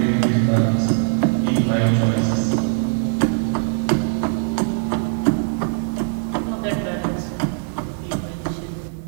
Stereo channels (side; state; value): left; silent; 61 dB below the other